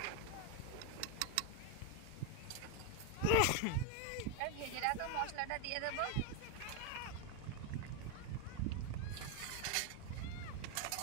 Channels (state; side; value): different; both; correlation 0.01